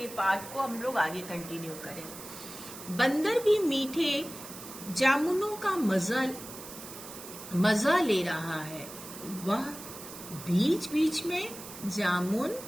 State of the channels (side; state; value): right; noise; hiss, 13 dB below the sound